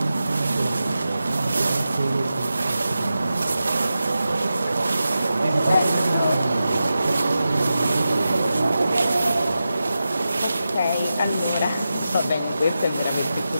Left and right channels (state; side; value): inverted; both; correlation -0.91